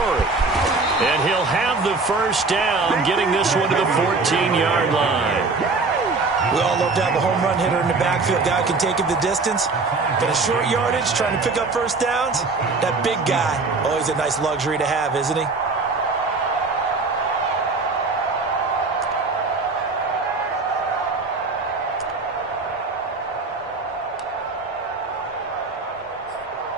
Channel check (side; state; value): left; quieter; 3.9 dB